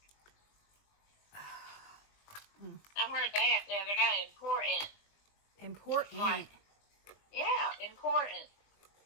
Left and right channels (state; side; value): late; right; 20 ms